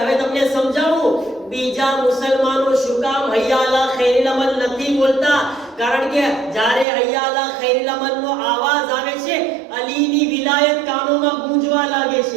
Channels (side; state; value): left; drops out; at 6.9 s